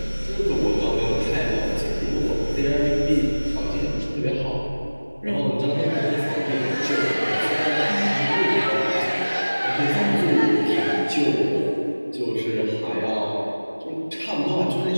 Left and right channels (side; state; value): both; inverted; correlation -1.00